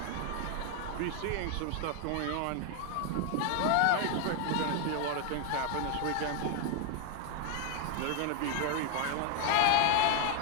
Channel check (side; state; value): both; different; correlation 0.01